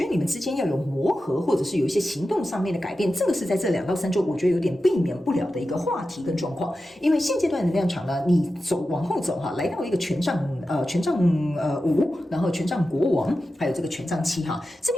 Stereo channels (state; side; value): normal; both; correlation 0.92